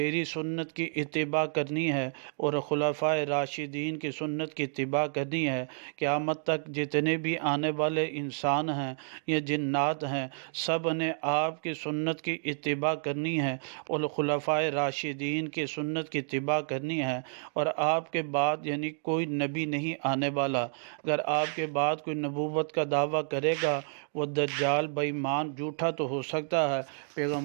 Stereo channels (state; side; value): silent; left; digital silence